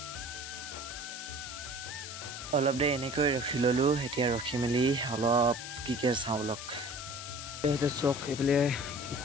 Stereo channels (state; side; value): noise; left; hiss, 9 dB below the sound